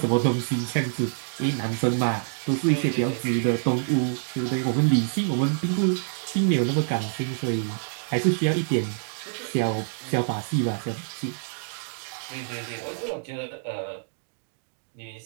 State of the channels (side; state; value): left; silent; digital silence